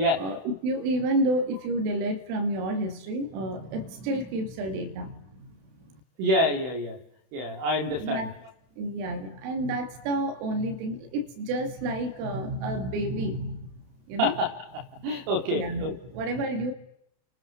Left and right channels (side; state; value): left; late; 32 ms